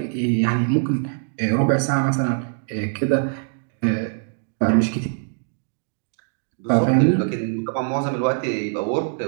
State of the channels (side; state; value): left; silent; digital silence